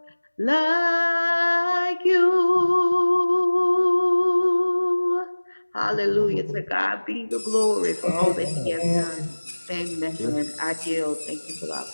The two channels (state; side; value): inverted; both; correlation -1.00